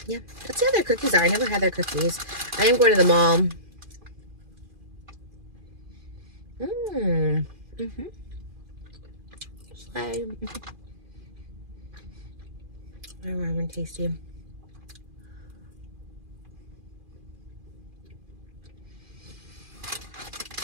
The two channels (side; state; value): left; late; 2.4 ms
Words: Yeah, let's see how their cookies are. I never had their cookies. I am going to the mall. They're warm and tasty.